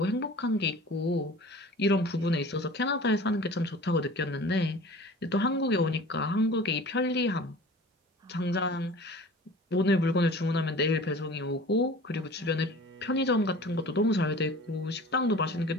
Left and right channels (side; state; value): both; normal; correlation 0.42